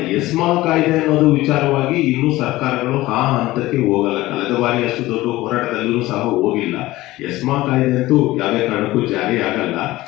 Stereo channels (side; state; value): right; quieter; 17.7 dB